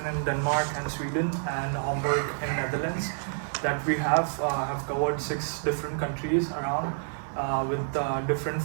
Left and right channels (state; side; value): silent; left; 59 dB below the other